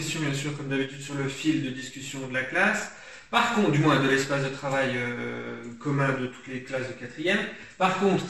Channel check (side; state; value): both; identical; correlation 1.00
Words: bien sûr, comme d'habitude, sur le fil de discussion de la classe. Par contre, du moins de l'espace de travail commun de toutes les classes de quatrième. Par contre,